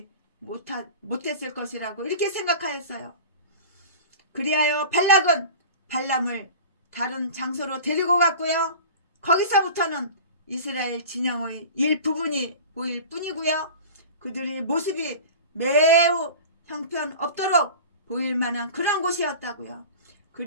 못했을 것이라고 이렇게 생각하였어요. 그리하여 발락은 발람을 다른 장소로 데리고 갔고요. 거기서부터는 이스라엘 진영의 일부분이 보일 뿐이고요. 그들의 모습이 매우 형편없도록 보일 만한 그런 곳이었다고요.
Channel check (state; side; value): inverted; both; correlation -0.36